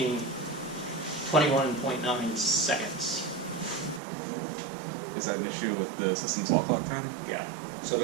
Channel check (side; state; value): left; drops out; at 4.0 s